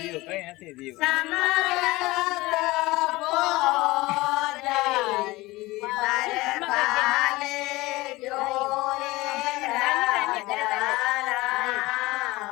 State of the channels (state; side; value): quieter; right; 20.3 dB